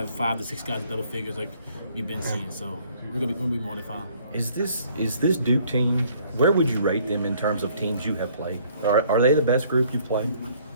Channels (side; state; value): both; inverted; correlation -0.61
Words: 5 to 6 guys in double figures like we've been seeing. So we're gonna be more than fine. Is this Duke team? Where would you rate them in terms of teams you have played? Are they the best group you've played?